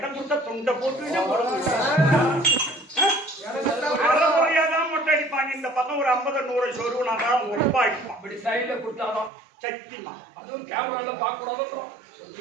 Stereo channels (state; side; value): drops out; left; at 9.3 s